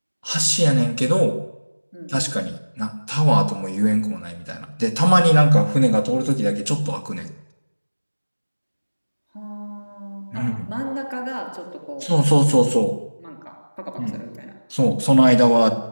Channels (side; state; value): both; inverted; correlation -1.00